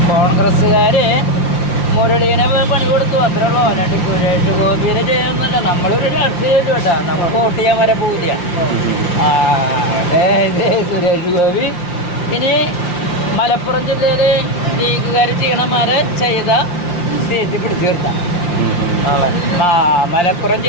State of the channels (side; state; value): right; late; 5.7 ms